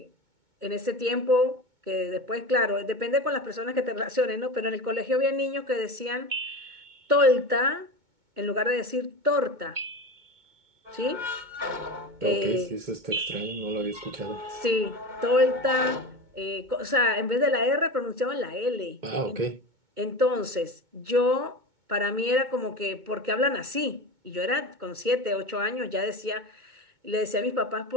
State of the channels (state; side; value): late; left; 2.2 ms